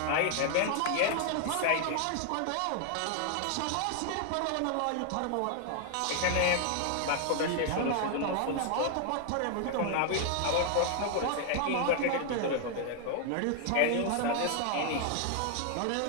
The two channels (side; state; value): both; different; correlation 0.00